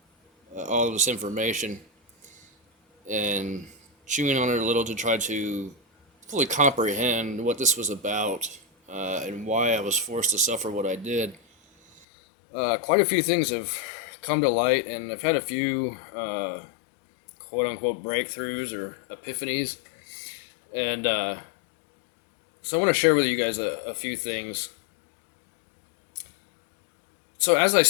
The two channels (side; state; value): right; drops out; at 12.1 s